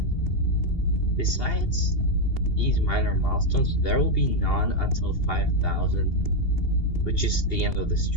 Besides these minor milestones, there will be none until 5,000, which is the end of the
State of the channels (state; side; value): late; right; 2.8 ms